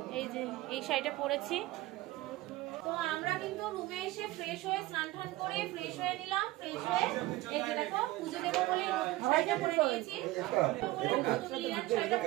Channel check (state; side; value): quieter; left; 18.2 dB